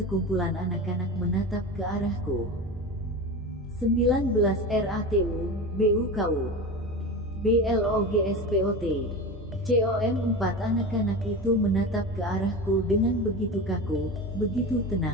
anak-anak menatap ke arahku. 19 RATU, BUKU, BLOGSPOT, COM. 4 anak-anak itu menatap ke arahku dengan begitu kaku, begitu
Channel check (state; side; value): normal; both; correlation 0.27